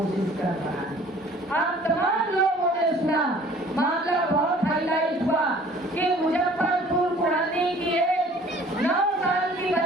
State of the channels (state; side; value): normal; both; correlation 0.52